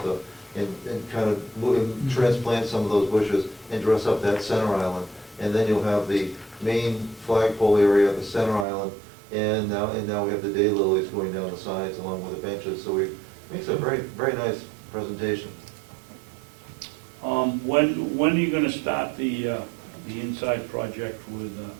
and kind of transplant some of those bushes and dress up that center island. And then you'll have the main flagpole area, the center island, and now we have the daylilies going down the sides along with the benches. So it makes a very, very nice presentation. When are you gonna start the inside project with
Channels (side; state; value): left; drops out; at 8.7 s